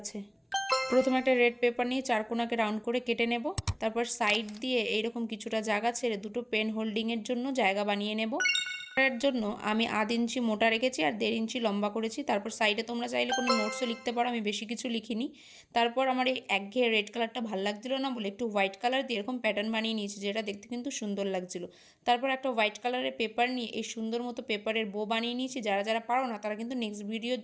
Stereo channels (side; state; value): both; identical; correlation 1.00